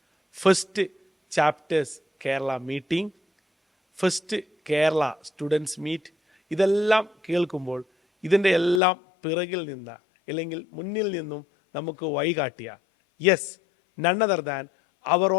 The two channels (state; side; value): drops out; right; at 8.8 s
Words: first chapters Kerala meeting, first Kerala students meet, ഇതെല്ലാം കേൾക്കുമ്പോൾ ഇതിൻ്റെ എല്ലാം പിറകിൽ നിന്ന് അല്ലെങ്കിൽ മുന്നിൽ നിന്നും നമുക്ക് വഴികാട്ടിയ yes, none other than our